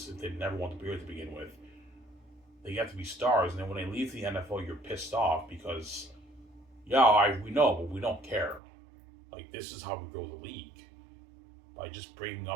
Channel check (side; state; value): left; drops out; at 8.6 s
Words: if they never want to be here to begin with. They get to be stars, and then when they leave the NFL, you're pissed off because, yeah, we know, but we don't care. Like, this is how we grow the league. By just bringing